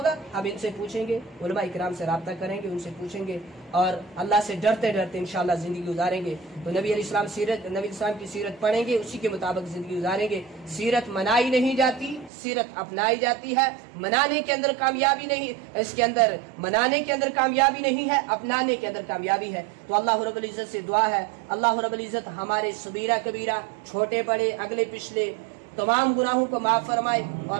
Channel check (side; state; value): left; drops out; at 12.3 s